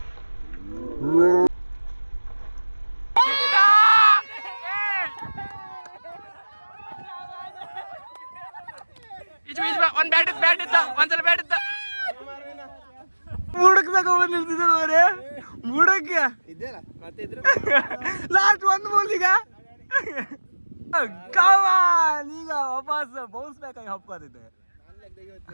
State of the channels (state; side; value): inverted; both; correlation -1.00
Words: ಒಂದ್ಸಲ ಬ್ಯಾಟ್ ಇತ್ತ ಬುಡಕ್ ತಗೊಂಡ್ ನಿಲ್ತಿದ್ದೆ ಬುಡಕ್ಕೆ ಲಾಸ್ಟ್ 1 ಬಾಲ್. ಈಗ ಈಗ ವಾಪಸ್ ಬೌನ್ಸ್ ಬ್ಯಾಕ್ ಆಗಿ ಹಪ್ಕೋದಿದ್ದೆ.